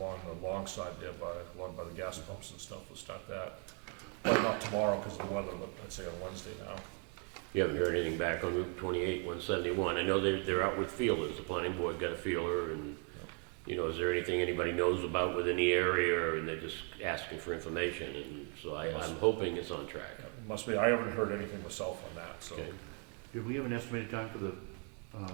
the long side there along by the gas pumps and stuff. We'll start that. But not tomorrow because of the weather, but I'd say on Wednesday now. You haven't heard anything back on Route 28, 171. I know they're out with feelers. The planning board got a feeler, and, is there anything anybody knows about within the area, and they're just asking for information, and so I'm hoping it's on track. Must be, I haven't heard anything myself on that, so. Okay. Did we have an estimated time for the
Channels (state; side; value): quieter; left; 39.6 dB